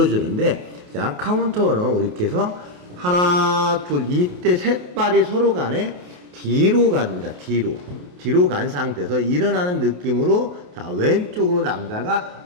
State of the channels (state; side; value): late; left; 28 ms